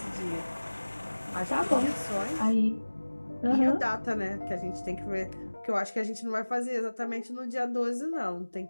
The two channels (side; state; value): both; inverted; correlation -1.00